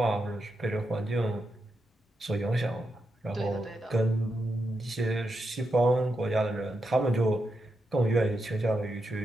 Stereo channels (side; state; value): both; normal; correlation 0.85